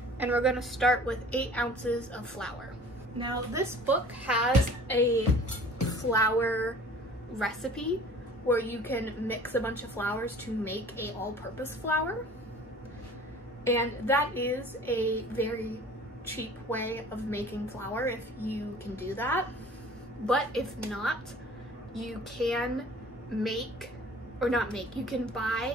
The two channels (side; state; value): both; normal; correlation 0.47